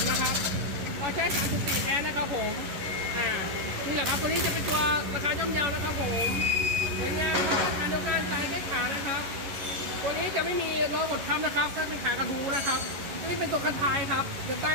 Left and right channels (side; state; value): left; late; 11 ms